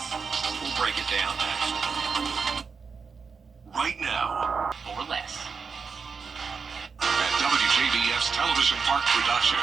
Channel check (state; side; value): quieter; left; 5.4 dB